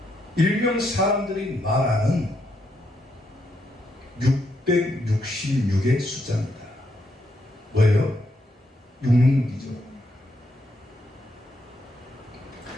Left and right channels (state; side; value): normal; both; correlation 0.78